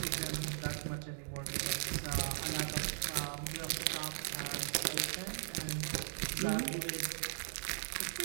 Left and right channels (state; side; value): silent; left; digital silence